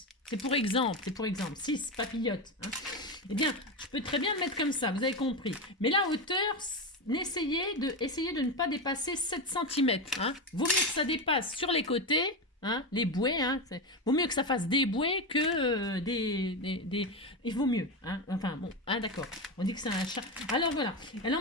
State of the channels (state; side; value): normal; both; correlation 0.15